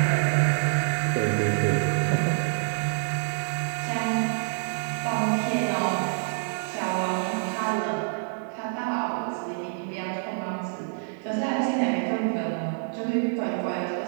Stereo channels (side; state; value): left; silent; 60 dB below the other